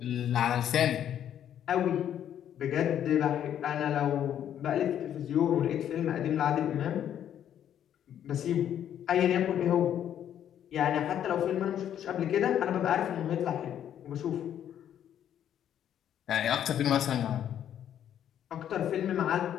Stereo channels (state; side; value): quieter; right; 10.1 dB